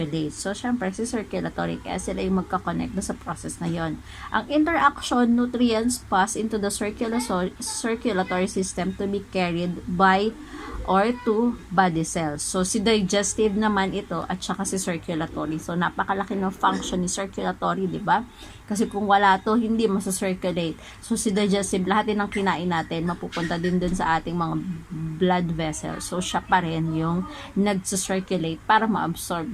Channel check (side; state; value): both; identical; correlation 1.00